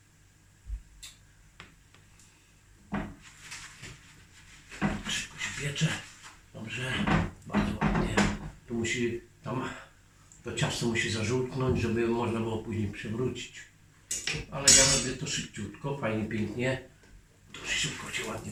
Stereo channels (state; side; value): identical; both; correlation 1.00